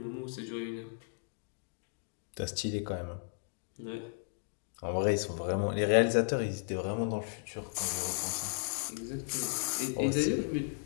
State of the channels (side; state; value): right; silent; digital silence